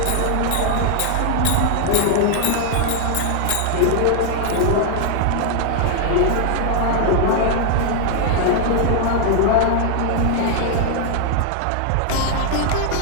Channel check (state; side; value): different; both; correlation 0.00